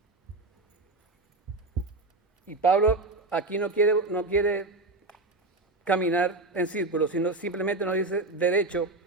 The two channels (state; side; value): quieter; left; 3.2 dB